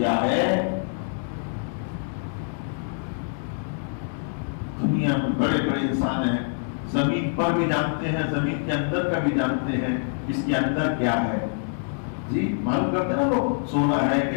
ہے؟ دنیا میں بڑے بڑے انسان ہیں، زمین پر بھی جانتے ہیں، زمین کے اندر کا بھی جانتے ہیں اس کے اندر کیا ہے. جی معلوم کرتے ہیں نا لوگ، سونا ہے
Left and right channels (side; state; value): right; silent; digital silence